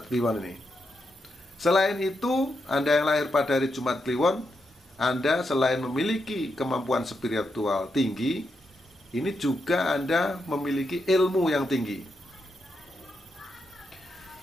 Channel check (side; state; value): both; normal; correlation 0.84